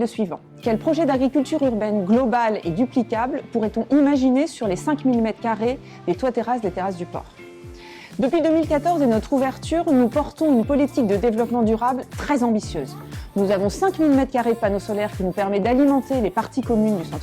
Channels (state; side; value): identical; both; correlation 1.00